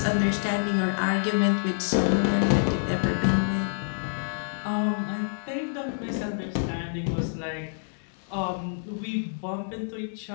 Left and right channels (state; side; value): silent; right; digital silence